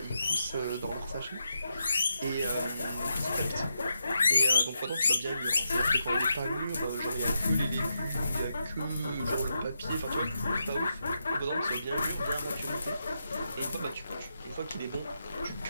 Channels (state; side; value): inverted; both; correlation -0.85